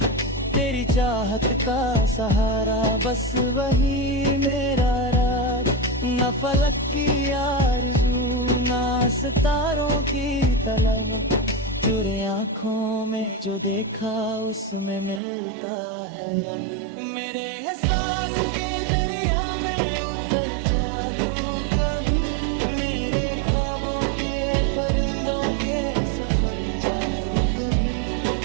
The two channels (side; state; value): left; drops out; at 15.2 s